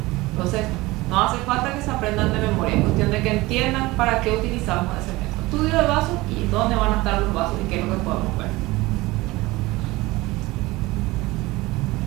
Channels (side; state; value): left; quieter; 20.4 dB